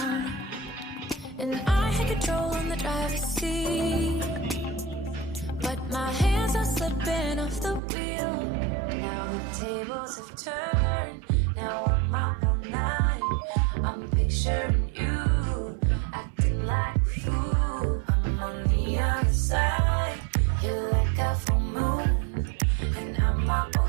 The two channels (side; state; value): left; drops out; at 7.8 s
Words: And I had control on the driver's seat, but my hands are slipping off the wheel. Now the tables have turned, now I'm up all night. I'm picturing you acting like a fool. I'm on the other side, you're like a full moon, and I'm up all